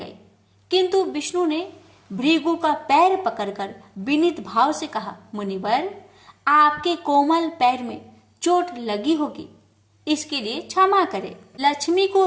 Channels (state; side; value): identical; both; correlation 1.00